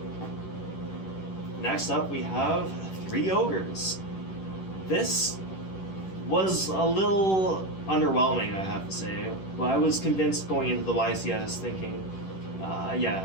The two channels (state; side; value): late; right; 10 ms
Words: Next up we have 3 Ogres. This was a little underwhelming, I have to say, but I was convinced going into the YCS thinking,